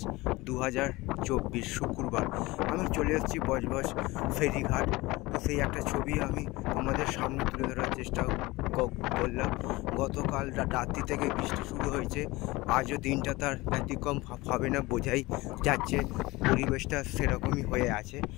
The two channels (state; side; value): quieter; right; 21.1 dB